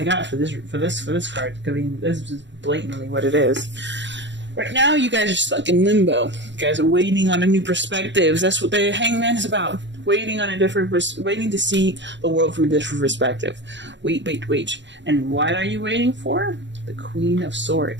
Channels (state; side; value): late; left; 0.53 ms